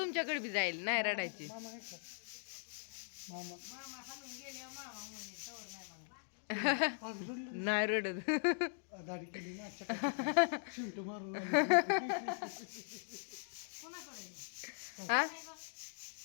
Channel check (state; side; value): silent; right; digital silence